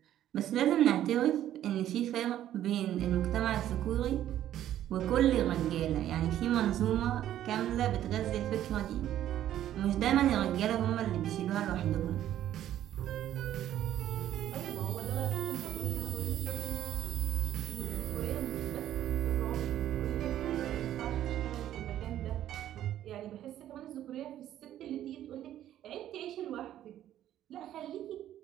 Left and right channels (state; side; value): quieter; left; 12.0 dB